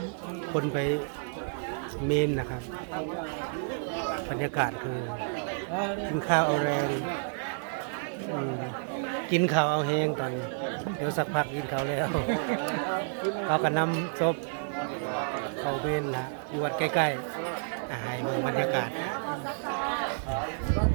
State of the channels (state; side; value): silent; left; 58 dB below the other